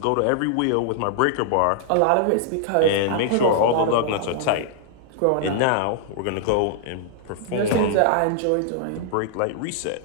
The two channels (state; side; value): different; both; correlation -0.01